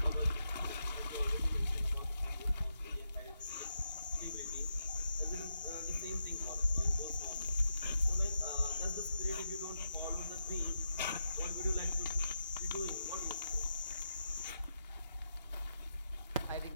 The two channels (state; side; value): inverted; both; correlation -0.84